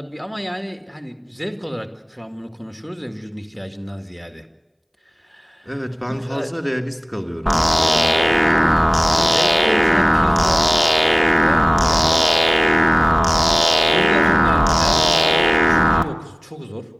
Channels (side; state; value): both; identical; correlation 1.00